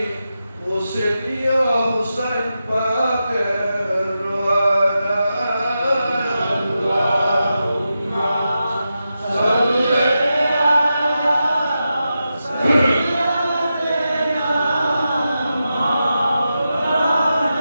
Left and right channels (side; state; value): both; inverted; correlation -0.89